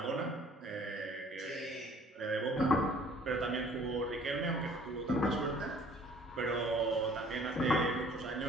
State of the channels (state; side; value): normal; both; correlation 0.55